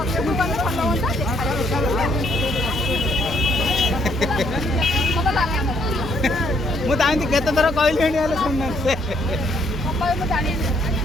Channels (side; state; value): both; normal; correlation 0.69